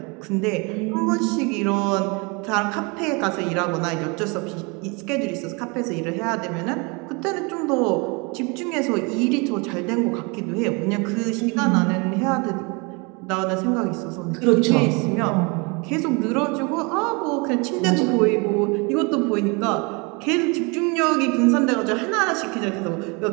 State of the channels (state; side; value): quieter; left; 29.8 dB